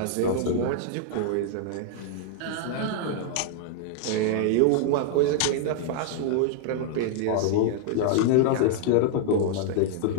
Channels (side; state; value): both; different; correlation -0.01